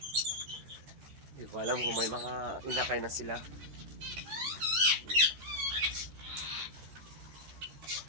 Hindi ko alam kung may mga inakay na sila.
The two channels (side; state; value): left; late; 13 ms